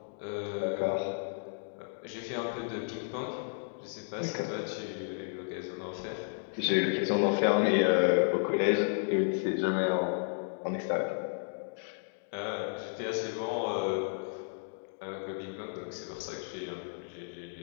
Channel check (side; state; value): right; silent; digital silence